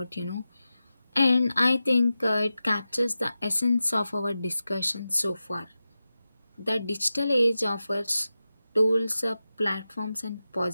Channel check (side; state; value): both; inverted; correlation -0.92